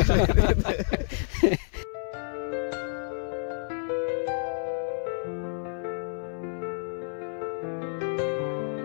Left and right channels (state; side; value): silent; right; 59 dB below the other